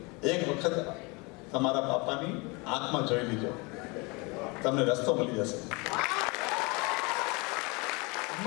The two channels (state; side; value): quieter; right; 27.9 dB